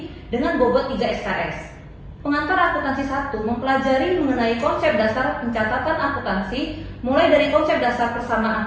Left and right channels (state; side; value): identical; both; correlation 1.00